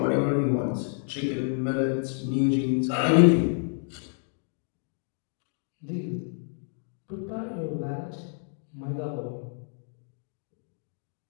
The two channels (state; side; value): silent; right; 59 dB below the other